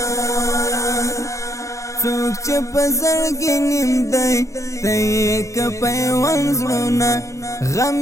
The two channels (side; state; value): right; late; 0.15 ms